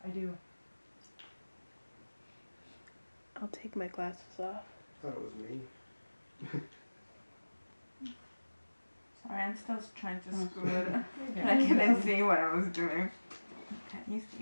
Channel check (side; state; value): both; inverted; correlation -1.00